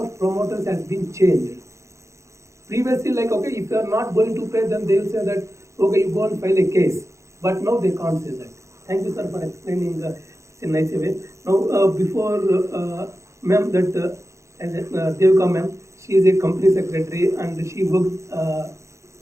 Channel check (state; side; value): late; left; 0.14 ms